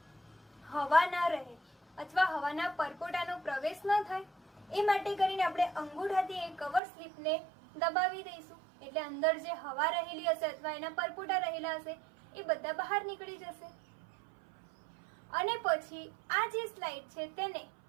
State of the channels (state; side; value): drops out; left; at 6.8 s